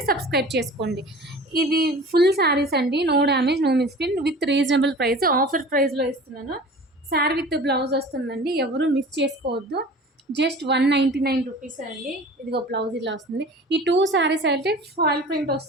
సబ్స్క్రైబ్ చేసుకోండి. ఇది ఫుల్ శారీస్ అండి. No damage, no misprint, with reasonable price. Offer ప్రైస్లో ఇస్తున్నాను. శారీ విత్ బ్లౌజ్ వస్తుందండి. ఎవరు మిస్ చేసుకోవద్దు. జస్ట్ 199 రూపీస్ అండి. ఇదిగో బ్లౌజ్ ఇలా వస్తుంది. ఈ 2 శారీస్ అయితే ఫాయిల్ ప్రింట్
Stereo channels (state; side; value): normal; both; correlation 0.41